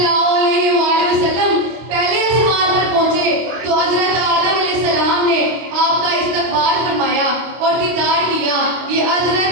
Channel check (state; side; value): late; left; 25 ms